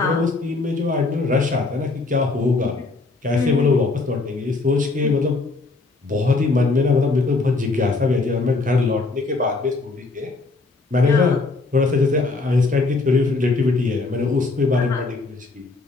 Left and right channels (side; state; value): right; quieter; 3.6 dB